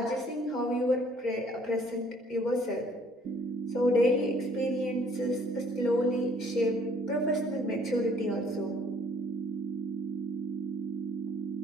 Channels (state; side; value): normal; both; correlation 0.60